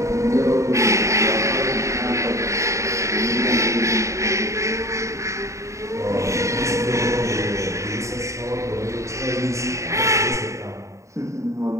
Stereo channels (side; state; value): left; late; 0.15 ms